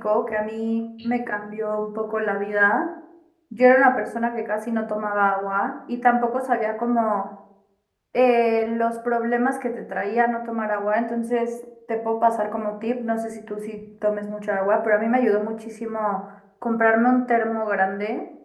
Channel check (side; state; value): both; identical; correlation 1.00